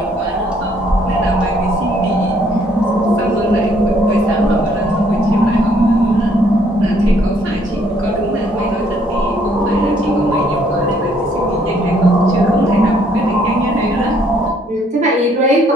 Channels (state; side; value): normal; both; correlation 0.66